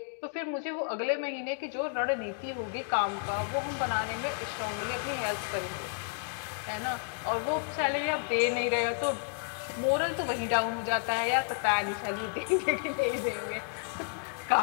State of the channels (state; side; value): silent; right; 57 dB below the other